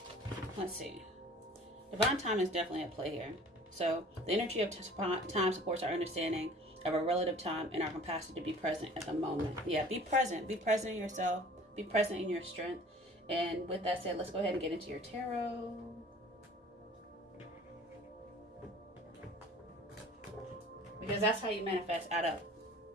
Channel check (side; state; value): both; normal; correlation 0.47